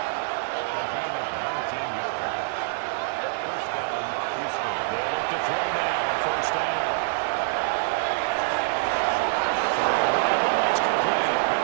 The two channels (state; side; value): silent; left; digital silence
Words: They look to throw now, 1st down.